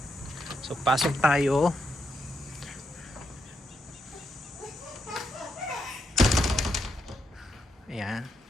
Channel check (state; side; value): normal; both; correlation 0.81